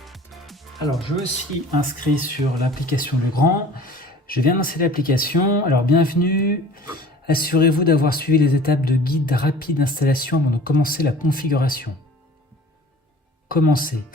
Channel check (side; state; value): both; normal; correlation 0.45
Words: Alors je me suis inscrit sur l'application Legrand. Je viens lancer l'application. Alors bienvenue. Assurez-vous d'avoir suivi les étapes de guide rapide d'installation avant de commencer la configuration. Commencez.